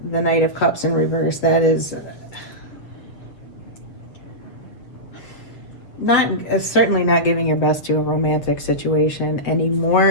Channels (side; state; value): right; late; 7.6 ms